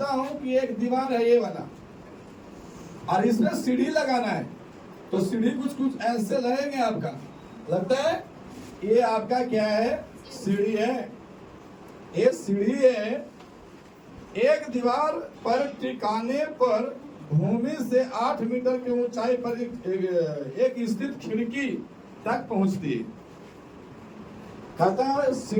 हूँ कि एक दीवार है ये वाला और इसमें सीढ़ी लगाना है, तो सीढ़ी कुछ ऐसे लगेंगे। आपका लगता है ये आपका क्या है? सीढ़ी है। ये सीढ़ी है। एक दीवार पर टिकाने पर भूमि से 8 मीटर की ऊंचाई पर एक स्थित खिड़की तक पहुंचती है। कहता है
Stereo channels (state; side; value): identical; both; correlation 1.00